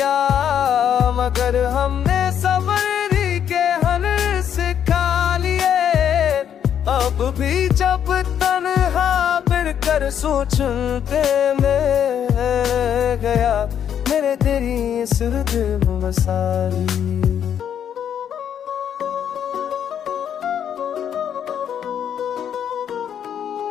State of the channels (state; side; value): quieter; right; 9.1 dB